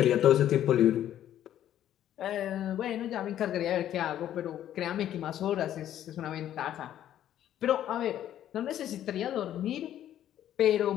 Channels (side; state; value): right; quieter; 11.4 dB